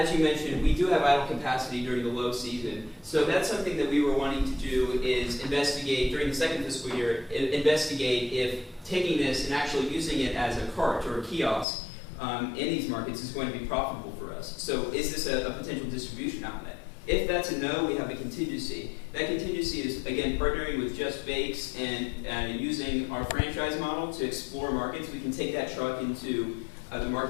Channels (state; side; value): drops out; right; at 11.7 s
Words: you mentioned, we do have idle capacity during the low season. So that's something that we were wanting to do is investigate during the second fiscal year, investigate if taking this and actually using it as a cart or a kiosk in these markets is going to be profitable for us. So is this a potential distribution outlet? If that's a no, we have a contingency. That contingency is, again, partnering with Just Bakes and using our franchise model to explore markets. We can take that truck into the